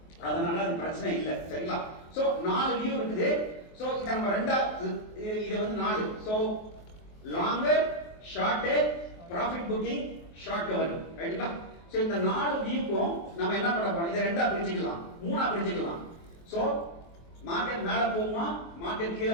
அதனால அது பிரச்சனை இல்லை. சரிங்களா? சோ 4 வியூ இருக்குது. சோ இத நம்ம இது வந்து 4. So longer, short, profit booking, short covering. ரைட்டுங்களா? சோ இந்த 4 வியூக்கும் நம்ம என்ன பண்ண போறோம்? இத ரெண்டா பிரிச்சுக்கலாம், மூணா பிரிச்சுக்கலாம். சோ மார்க்கெட் மேல போகுமா, மார்க்கெட் கீழே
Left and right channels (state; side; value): late; right; 23 ms